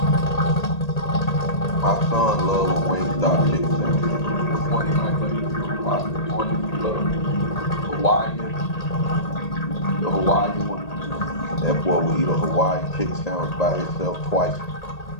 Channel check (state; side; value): late; right; 1.8 ms